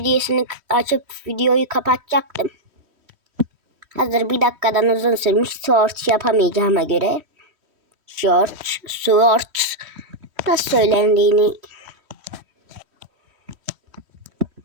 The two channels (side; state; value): left; late; 3.1 ms